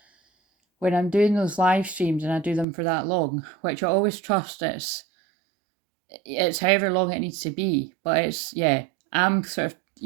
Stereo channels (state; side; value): drops out; left; at 2.7 s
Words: I'm doing those live streams and I do them for that long, which I always trust it's however long it needs to be. But it's yeah, I'm sort